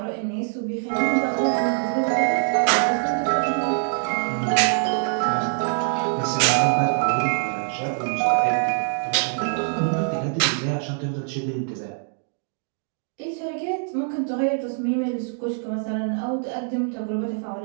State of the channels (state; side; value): silent; left; 63 dB below the other